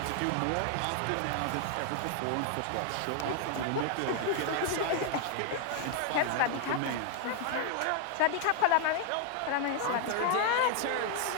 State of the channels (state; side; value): different; both; correlation 0.00